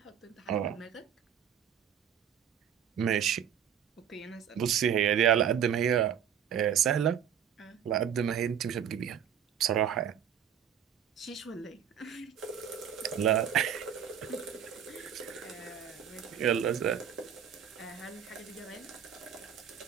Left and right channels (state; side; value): quieter; left; 8.8 dB